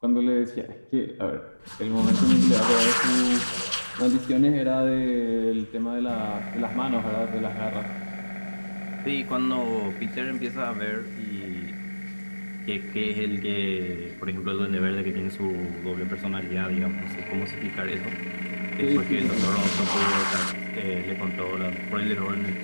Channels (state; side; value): inverted; both; correlation -1.00